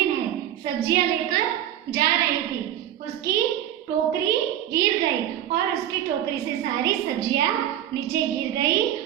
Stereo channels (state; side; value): quieter; left; 11.5 dB